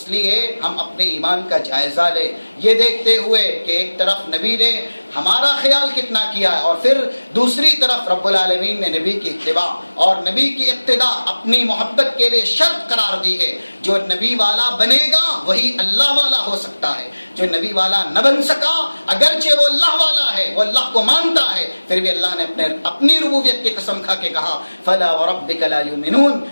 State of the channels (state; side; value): inverted; both; correlation -1.00